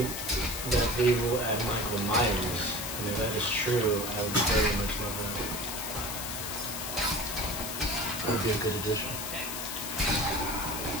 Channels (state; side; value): noise; left; hiss, 5 dB below the sound